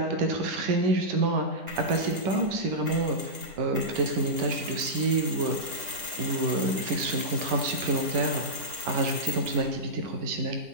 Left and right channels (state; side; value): late; left; 10 ms